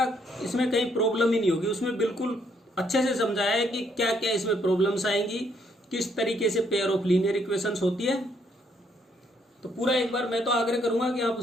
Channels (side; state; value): both; normal; correlation 0.70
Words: इसमें कहीं प्रॉब्लम ही नहीं होगी। उसमें बिल्कुल अच्छे से समझाया है कि क्या क्या इसमें प्रॉब्लम्स आएंगी, किस तरीके से पेयर ऑफ लीनियर इक्वेशंस होती है। तो पूरा एक बार मैं तो आग्रह करूंगा कि आप